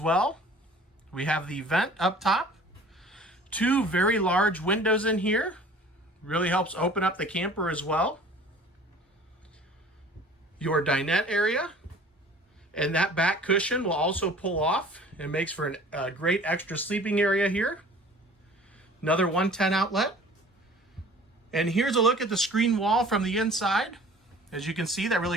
We have the vent up top. 2 very large windows in here. Really helps open up the camper as well. your dinette area, and that back cushion will also pull off and makes for a great extra sleeping area here. Another 110 outlet. And here's a look at the screen wall from the inside. As you can see, that really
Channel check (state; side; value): normal; both; correlation 0.48